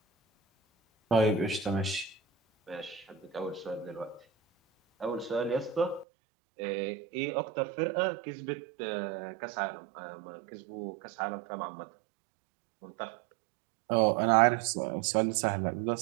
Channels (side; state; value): left; drops out; at 6.1 s